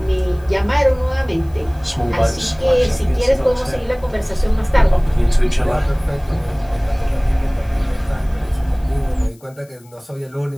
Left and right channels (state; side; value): noise; left; hiss, 29 dB below the sound